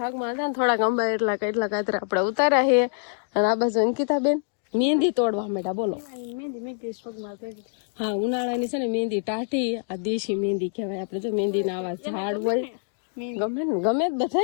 હતા ને થોડાક અંબા એટલા કાતરા આપણે ઉતાર્યા છે. અને આ બાજુ અંકિતાબેન મહેંદી તોડવા માંડ્યા. બોલો. હા, ઉનાળાની છે ને મહેંદી ટાઢી, આ દેશી મહેંદી કહેવાય. આપણે જો મહેંદી ના આવા ઝાડ હોય, ગમે ને ગમે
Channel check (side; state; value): right; silent; digital silence